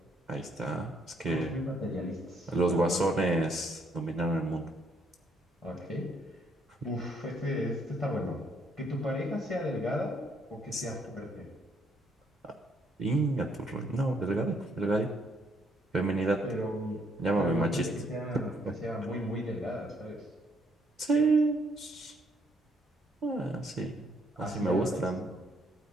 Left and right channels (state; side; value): normal; both; correlation 0.70